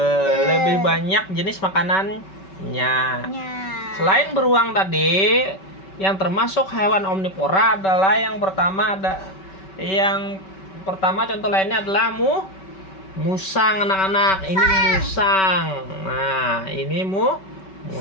lebih banyak jenis makanannya. Selain beruang tadi, yang termasuk hewan omnivora adalah yang pertama contoh lainnya adalah musang, anak-anak. Ini musang. Nah, ini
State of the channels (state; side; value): late; right; 5.2 ms